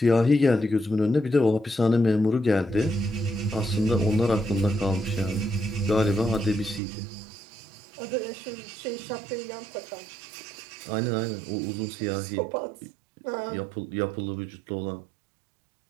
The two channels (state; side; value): drops out; left; at 6.8 s